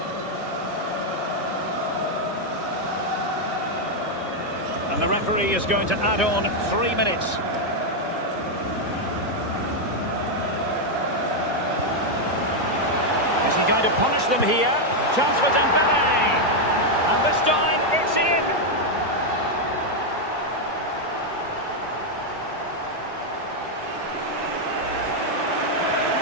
And the referee is going to add on 3 minutes. Is he going to punish them here? Chance for Dembele. And this time, it's in.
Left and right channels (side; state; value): both; normal; correlation 0.01